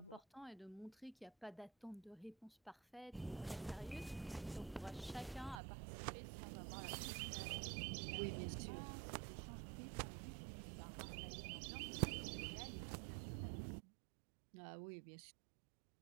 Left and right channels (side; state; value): left; drops out; at 5.6 s